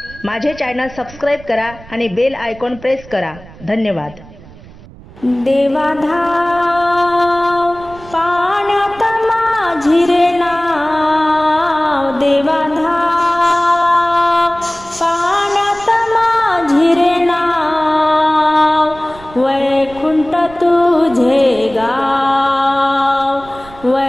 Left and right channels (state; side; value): noise; right; rumble, 20 dB below the sound